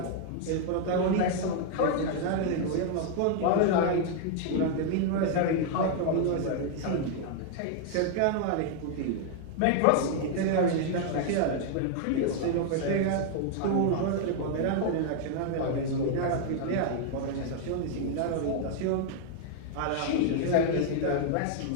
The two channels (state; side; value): different; both; correlation 0.00